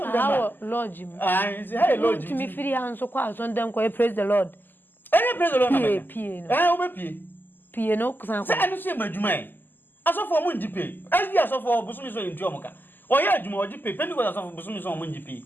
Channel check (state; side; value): late; right; 0.091 ms